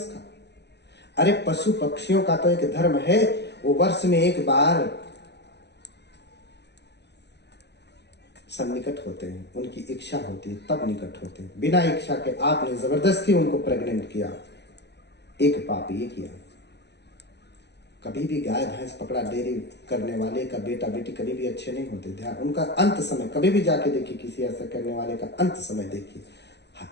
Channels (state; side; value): late; right; 0.50 ms